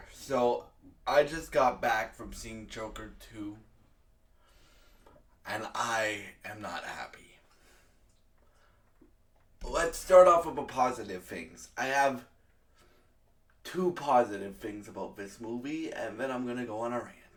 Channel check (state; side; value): identical; both; correlation 1.00